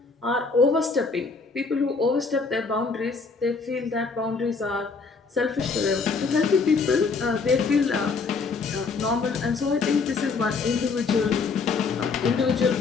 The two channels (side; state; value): right; quieter; 4.6 dB